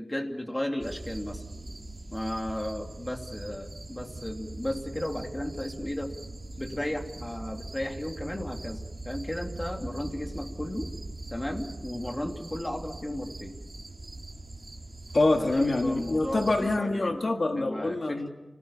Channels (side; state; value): both; normal; correlation 0.98